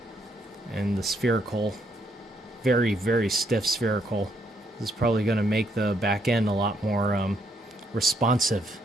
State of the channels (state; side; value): normal; both; correlation 0.73